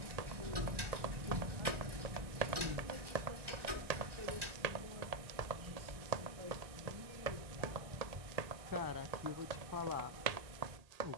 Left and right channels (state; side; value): late; left; 1.2 ms